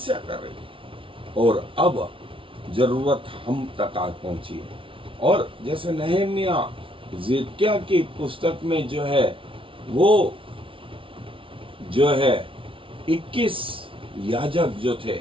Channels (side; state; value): left; late; 0.25 ms